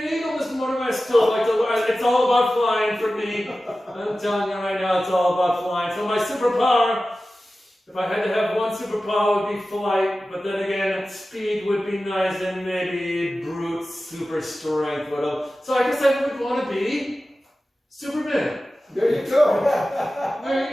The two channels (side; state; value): both; normal; correlation 0.95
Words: eagle, Mr. Morningway. I still like to. It's all about flying for me. I'm telling you right now, it's all about flying. So my superpower. If I had to have one superpower, it would be flight, but then again, speed would be nice, and maybe brute super strength would have. So I guess I would want to be Superman. There you go. There